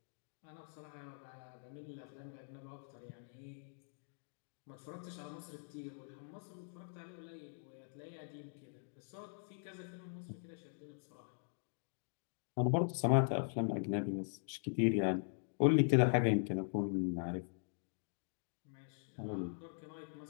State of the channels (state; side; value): silent; right; digital silence